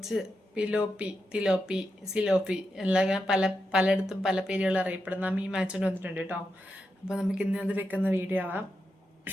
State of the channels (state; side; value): normal; both; correlation 0.86